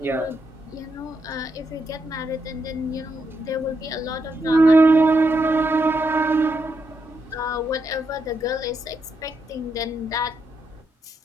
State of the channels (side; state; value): both; normal; correlation 0.81